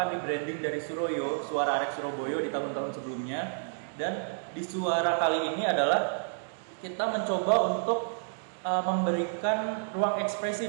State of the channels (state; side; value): silent; left; digital silence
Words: rebranding dari Suroyo, Suara Arek Surabaya di tahun-tahun sebelumnya. Dan di Suara kali ini adalah kita mencoba untuk memberikan ruang